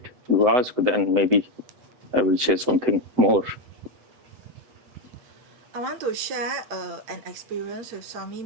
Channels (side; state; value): left; late; 7.9 ms